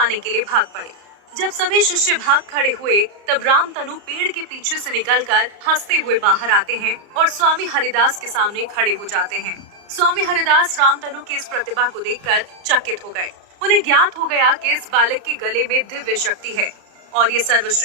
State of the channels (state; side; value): late; left; 34 ms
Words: के लिए भाग पड़े। जब सभी शिष्य भाग खड़े हुए, तब रामतनु पेड़ के पीछे से निकलकर हंसते हुए बाहर आते हैं और स्वामी हरिदास के सामने खड़े हो जाते हैं। स्वामी हरिदास रामतनु की इस प्रतिभा को देखकर चकित हो गए। उन्हें ज्ञात हो गया कि इस बालक के गले में दिव्य शक्ति है और ये